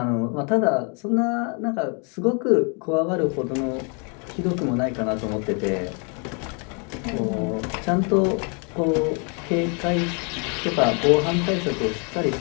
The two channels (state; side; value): quieter; right; 37.0 dB